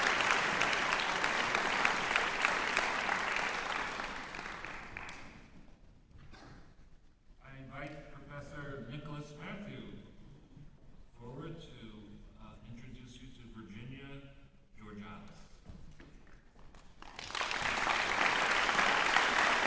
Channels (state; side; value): identical; both; correlation 1.00